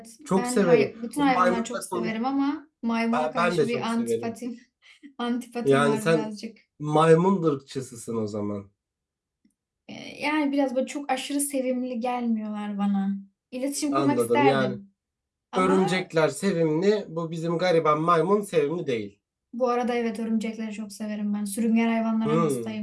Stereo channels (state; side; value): identical; both; correlation 1.00